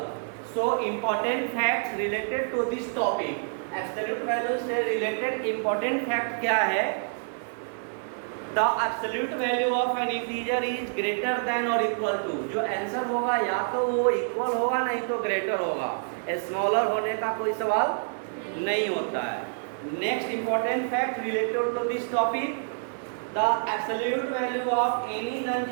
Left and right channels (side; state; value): left; silent; 60 dB below the other